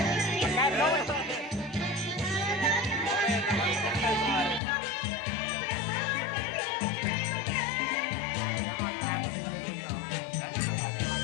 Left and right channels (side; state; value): right; drops out; at 4.6 s